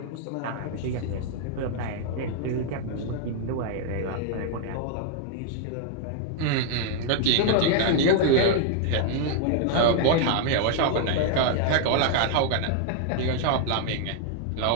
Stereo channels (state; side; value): different; both; correlation 0.00